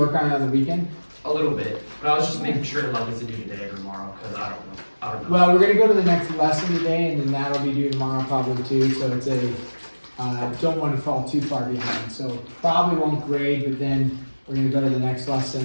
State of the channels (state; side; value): inverted; both; correlation -1.00